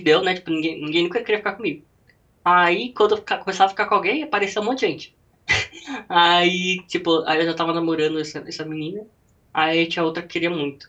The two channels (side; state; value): both; identical; correlation 1.00